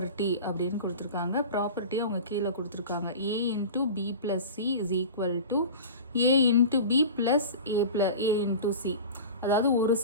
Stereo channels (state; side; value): inverted; both; correlation -0.34